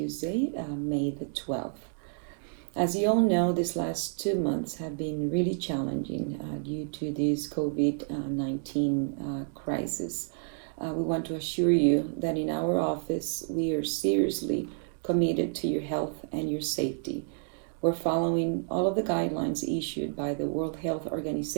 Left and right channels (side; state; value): left; silent; digital silence